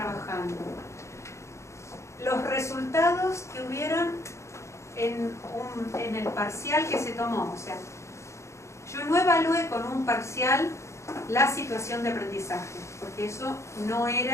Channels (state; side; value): late; right; 0.14 ms